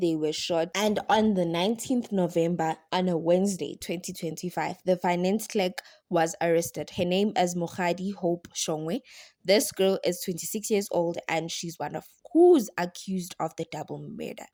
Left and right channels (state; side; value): identical; both; correlation 1.00